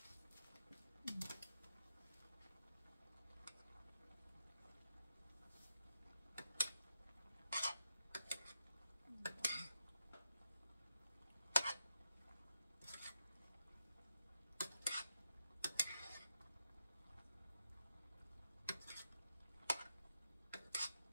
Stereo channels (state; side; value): inverted; both; correlation -0.86